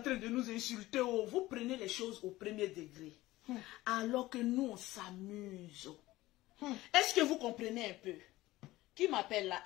train de nous insulter. Vous prenez les choses au premier degré. Alors que nous, on s'amuse. Est-ce que vous comprenez un peu? Qui m'appelle là?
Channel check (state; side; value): quieter; right; 17.6 dB